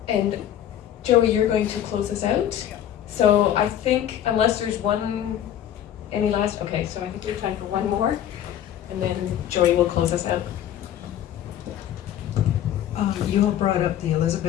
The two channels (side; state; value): right; quieter; 10.9 dB